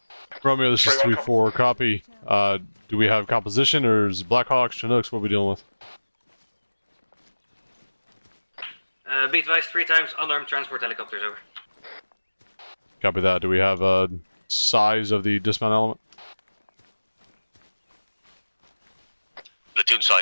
Romeo, this is 3-4. Copy. Do we have composition, or is it Blackhawks, Chinooks? What are we dealing with? Be advised, 3 times unarmed transport helicopters, over. Copy that. Do we have a size of the dismount element? Platoon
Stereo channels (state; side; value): inverted; both; correlation -1.00